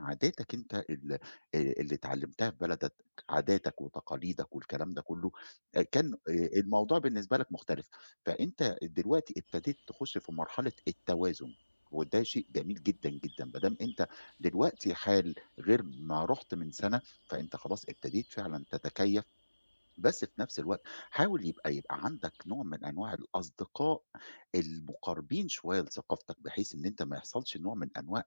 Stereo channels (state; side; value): inverted; both; correlation -1.00